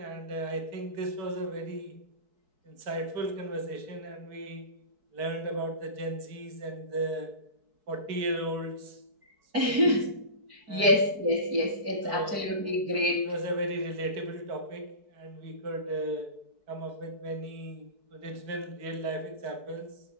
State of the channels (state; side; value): late; left; 4.6 ms